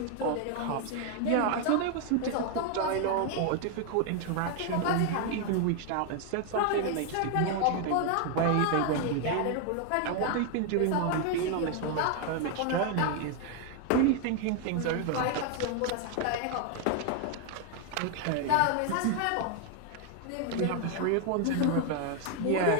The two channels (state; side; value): different; both; correlation 0.00